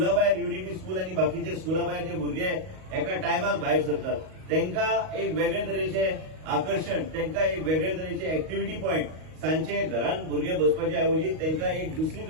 भायर युनिटी स्कूल आनी बाकीचे स्कुला भायर जे भुरगे एका टायमाक भायर सरतात तांकां एक वेगळे तरेचे आकर्षण तांकां एक वेगळे तरेचे एक्टिव्हिटी पॉयंट सांजचे घरांत भुरगे बसपाचे ऐवजी तांकां एक दुसरी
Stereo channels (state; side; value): late; left; 38 ms